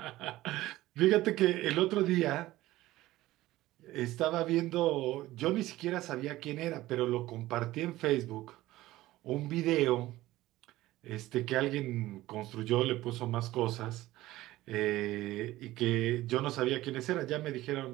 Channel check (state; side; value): quieter; left; 16.7 dB